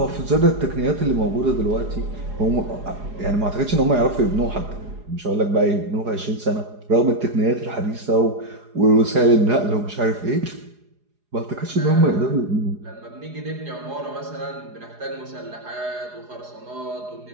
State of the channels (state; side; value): late; left; 4.8 ms